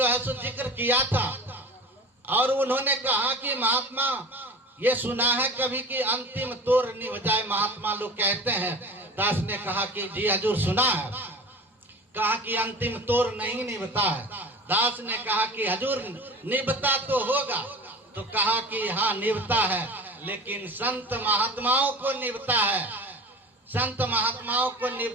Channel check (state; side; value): normal; both; correlation 0.36